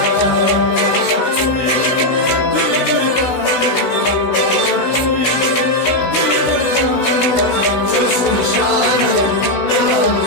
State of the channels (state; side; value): late; right; 16 ms